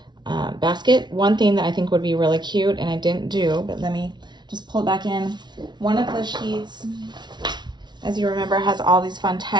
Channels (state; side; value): late; left; 0.21 ms